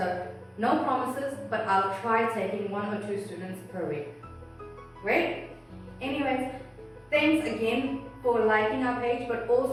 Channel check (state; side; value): identical; both; correlation 1.00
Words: no promises, but I'll try taking 1 or 2 students per week. Great? Anyways, thanks again for liking our page, but